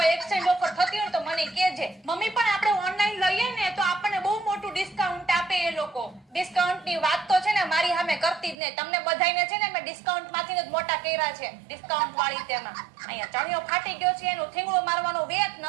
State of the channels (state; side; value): drops out; left; at 8.6 s